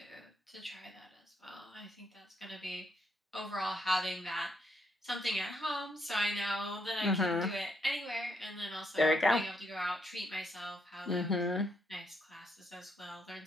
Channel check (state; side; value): normal; both; correlation 0.76